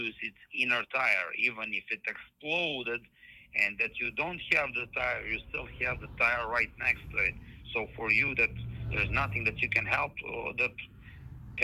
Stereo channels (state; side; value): identical; both; correlation 1.00